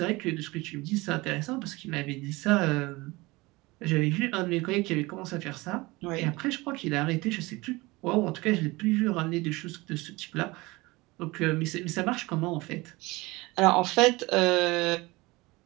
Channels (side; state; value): left; quieter; 22.3 dB